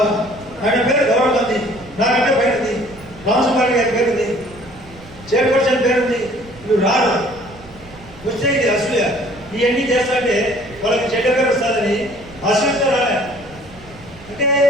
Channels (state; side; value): noise; right; rumble, 21 dB below the sound